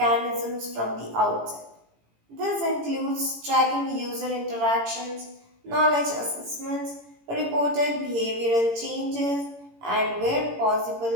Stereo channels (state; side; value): late; left; 18 ms